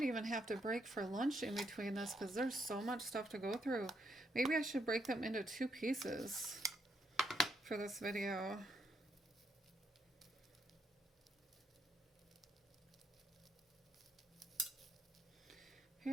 even have to break for lunch in between this because there's so much stuff to go through. Maybe I should break them into two pieces for this video.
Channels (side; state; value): both; normal; correlation 0.76